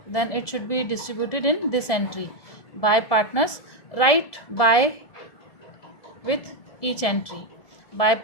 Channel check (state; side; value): late; right; 1.7 ms